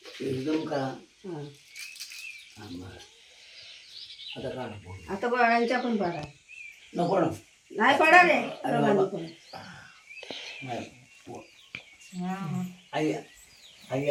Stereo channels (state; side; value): identical; both; correlation 1.00